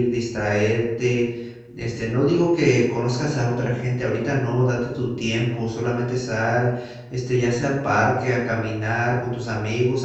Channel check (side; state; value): both; identical; correlation 1.00